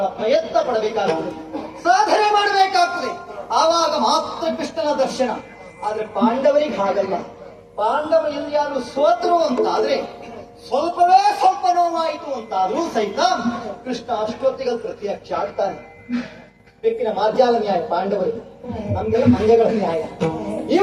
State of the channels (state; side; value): identical; both; correlation 1.00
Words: ಪ್ರಯತ್ನ ಪಡಬೇಕಾಗ್ತದೆ, ಸಾಧನೆ ಮಾಡಬೇಕಾಗ್ತದೆ. ಆವಾಗ ಮಾತ್ರ ಕೃಷ್ಣನ ದರ್ಶನ. ಆದ್ರೆ ಪಾಂಡವರಿಗೆ ಹಾಗಲ್ಲ. ಪಾಂಡವರು ಎಲ್ಲಿಯಾರು ಸೋತರು ಅಂತಾದ್ರೆ ಸ್ವಲ್ಪವೇ ಸ್ವಲ್ಪ ನೋವಾಯಿತು ಅಂತಾದ್ರೂ ಸಹಿತ ಕೃಷ್ಣ ಅಷ್ಟೊತ್ತಿಗೆ ಪ್ರತ್ಯಕ್ಷ ಆಗ್ತಾನೆ. ಬೆಕ್ಕಿನ ಮಾರ್ಜಾಲ ನ್ಯಾಯ ಪಾಂಡವರಿಗೆ, ನಮ್ಗೆಲ್ಲ ಮಂಗಗಳ ನ್ಯಾಯ.